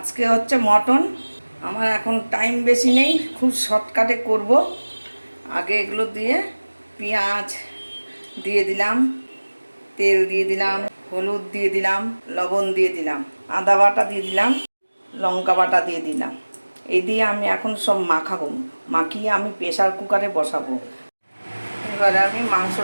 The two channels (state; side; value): inverted; both; correlation -1.00